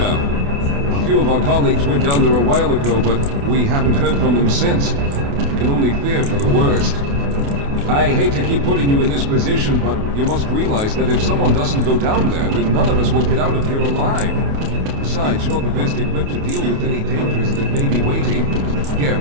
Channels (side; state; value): left; late; 28 ms